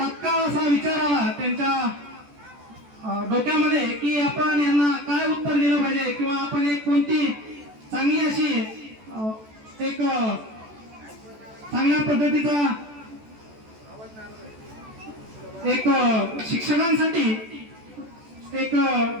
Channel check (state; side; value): late; left; 14 ms